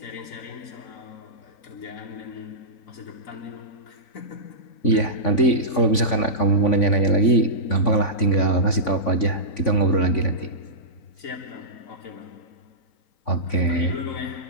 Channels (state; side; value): late; right; 3.5 ms